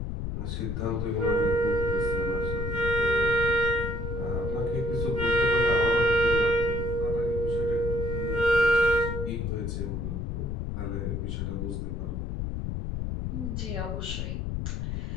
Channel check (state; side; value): noise; left; rumble, 3 dB below the sound